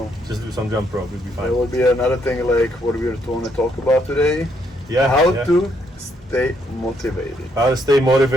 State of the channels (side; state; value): both; normal; correlation 0.73